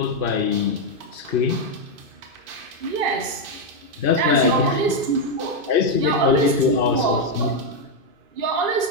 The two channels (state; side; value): late; left; 2.5 ms